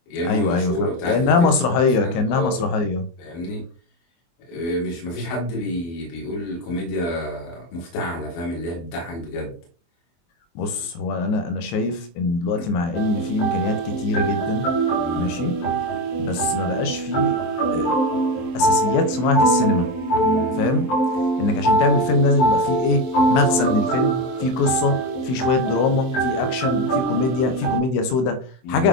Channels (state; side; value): late; right; 23 ms